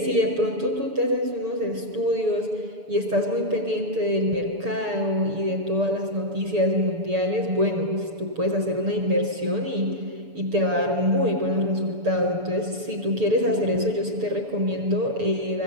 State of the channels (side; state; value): left; late; 7.0 ms